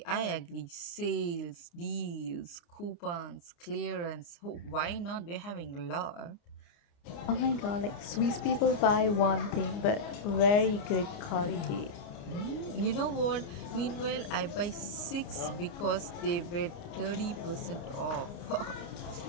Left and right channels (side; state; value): right; late; 29 ms